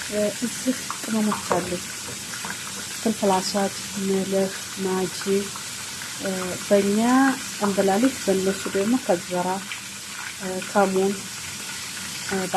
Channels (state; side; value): identical; both; correlation 1.00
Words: እዚህ ቅመሞች አሉ። ፍልፍል አስዋድ፣ መልህ፣ ማጂ በእኛ እንብላሊት፣ በእነሱ ደግሞ ከዘራ ከሙን